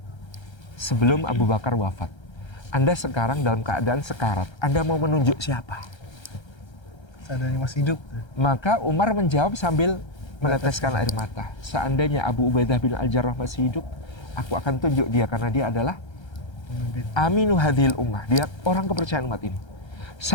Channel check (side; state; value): right; late; 1.3 ms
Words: sebelum Abu Bakar wafat. Anda sekarang dalam keadaan sekarat. Anda mau menunjuk siapa? Seandainya masih hidup. Maka Umar menjawab sambil meneteskan air mata. Seandainya Abu Ubaidah bin Al-Jarrah masih hidup, aku akan tunjuk dia karena dia adalah aminu hadhil ummah. Dia orang kepercayaan umat ini.